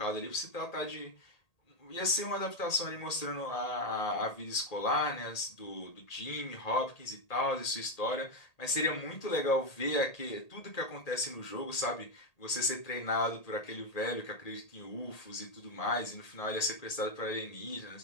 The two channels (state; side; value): late; right; 1.8 ms